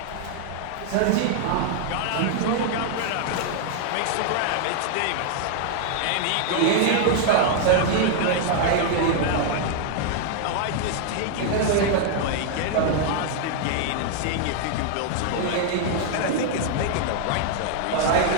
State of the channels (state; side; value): different; both; correlation 0.00